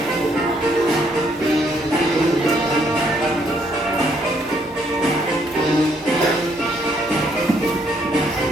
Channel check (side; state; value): both; normal; correlation 0.70